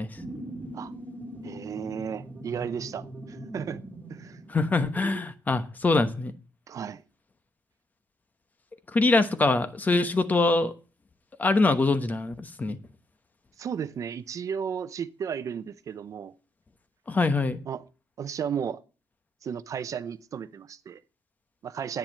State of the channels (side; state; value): both; normal; correlation 0.77